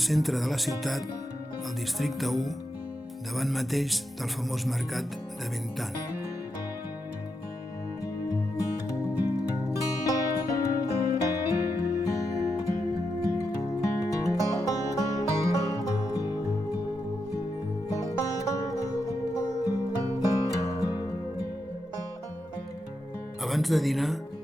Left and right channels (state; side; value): normal; both; correlation 0.85